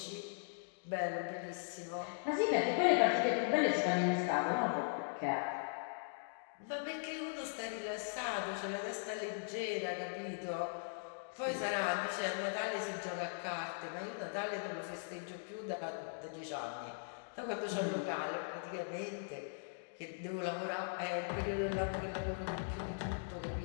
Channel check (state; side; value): silent; right; digital silence